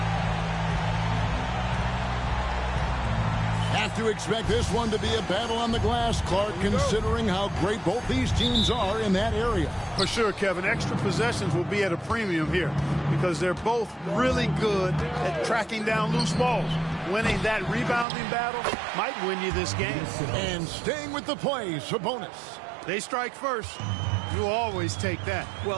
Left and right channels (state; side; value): drops out; left; at 18.1 s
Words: To expect this one to be a battle on the glass, Clark, considering how great both these teams are in that area. For sure, Kevin. Extra possessions will be at a premium here because they're both really good at tracking down loose balls. Winning that rebounding battle might win you this game. And staying with the play, Sabonis. They strike first. You'll always take that.